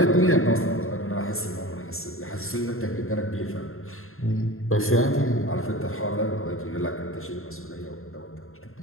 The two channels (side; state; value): right; late; 0.61 ms